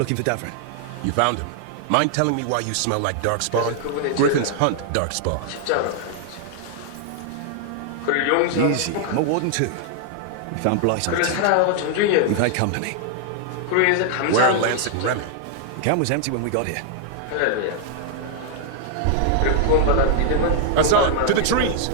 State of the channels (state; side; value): different; both; correlation 0.00